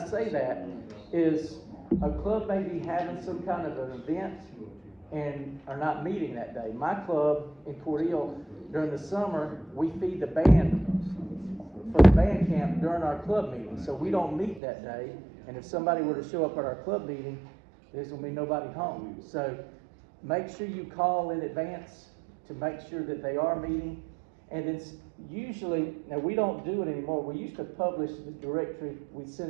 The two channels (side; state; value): left; drops out; at 14.6 s